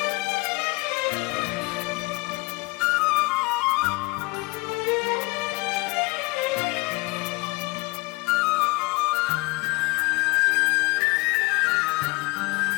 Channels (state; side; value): quieter; right; 24.4 dB